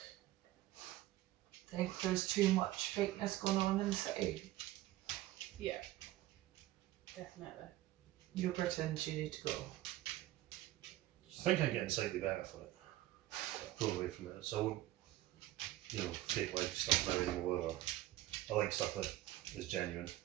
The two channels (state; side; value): quieter; left; 15.7 dB